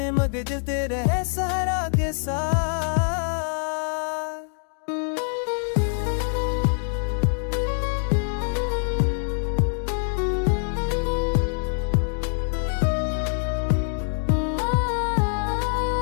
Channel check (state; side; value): silent; right; digital silence